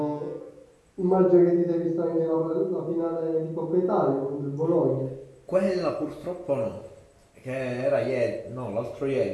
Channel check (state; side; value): identical; both; correlation 1.00